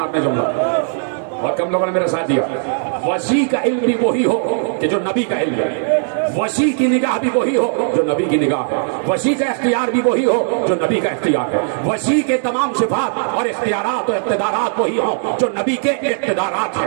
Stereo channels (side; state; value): left; silent; digital silence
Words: آپ نے جملہ، اور کم لوگوں نے میرے ساتھ دیا۔ وسیع کا علم بھی وہی ہو کہ جو نبی کا علم ہے، وسیع کی نگاہ بھی وہی ہو جو نبی کی نگاہ ہے، وسیع کا اختیار بھی وہی ہو جو نبی کا اختیار ہے، وسیع کے تمام صفات اور اختیارات اور اقتدارات وہی ہوں جو نبی کے اقتدارات